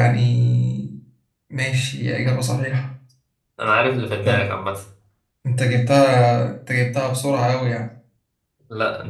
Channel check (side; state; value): both; identical; correlation 1.00